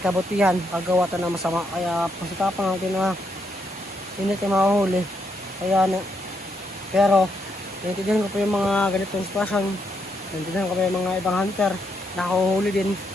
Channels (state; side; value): normal; both; correlation 0.77